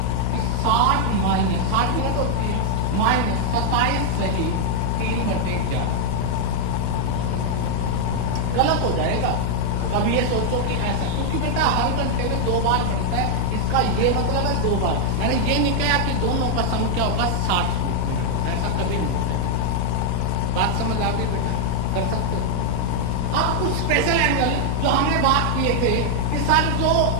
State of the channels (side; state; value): both; different; correlation 0.00